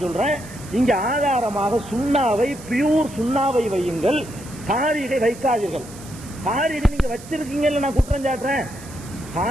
சொல்றேன். இங்க ஆதாரமாக சுண்ணாவை, பியூர் சுண்ணாவை வையுங்கள், தாரீகை வைக்காதீர்கள். தாரீகை நீங்க வச்சிருக்கீங்கல்ல, நான் குற்றம் சாட்டுறேன்.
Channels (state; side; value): noise; right; hiss, 18 dB below the sound